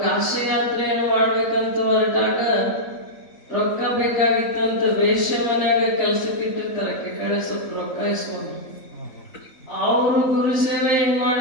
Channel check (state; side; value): late; right; 3.4 ms